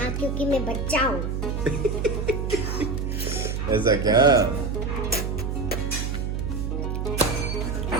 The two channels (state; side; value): noise; right; hum, 2 dB below the sound